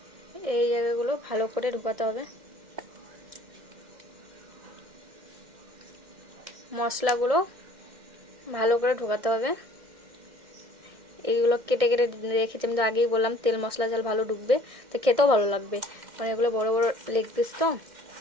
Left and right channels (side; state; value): left; late; 2.1 ms